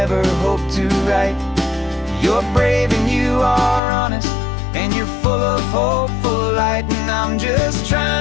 hope to write. You're brave and you are honest, and you're full of hope, full of light. And I'm just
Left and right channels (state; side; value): drops out; right; at 3.8 s